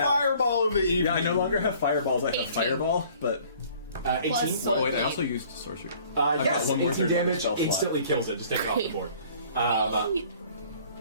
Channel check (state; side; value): inverted; both; correlation -0.54